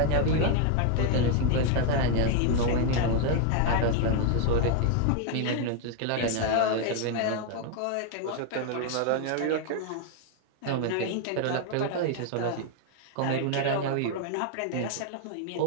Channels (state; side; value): different; both; correlation 0.00